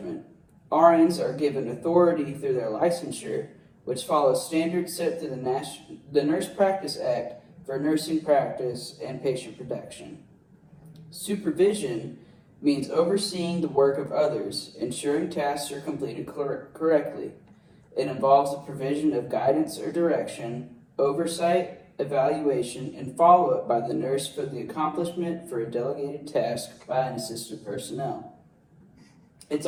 RNs are given authority through their licensure, which follows standards set through the Nurse Practice Act for nursing practice and patient protection. Supervision means overseeing the work of others, ensuring tasks are completed correctly. It involves the provision of guidance or direction, oversight, evaluation, and follow-up by the nurse for the accomplishment for a delegated task by an assistive personnel. It's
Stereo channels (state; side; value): identical; both; correlation 1.00